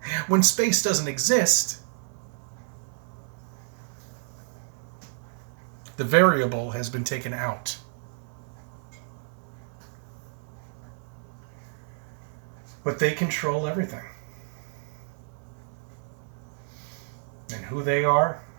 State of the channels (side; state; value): left; silent; 58 dB below the other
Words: When space doesn't exist, the variable has been taken out. But they control everything. And who they are,